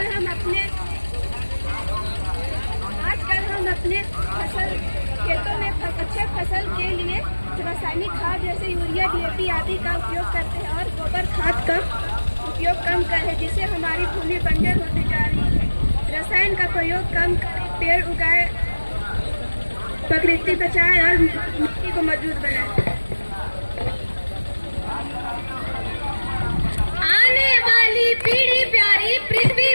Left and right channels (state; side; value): inverted; both; correlation -1.00